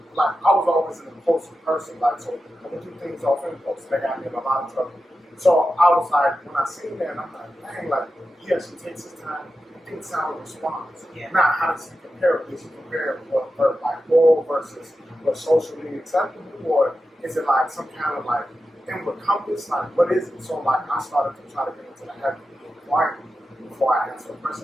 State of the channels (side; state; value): both; normal; correlation 0.91